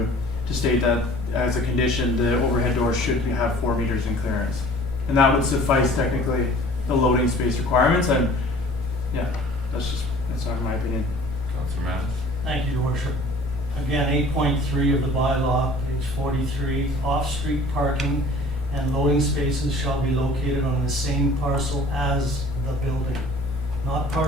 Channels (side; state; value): both; normal; correlation 0.48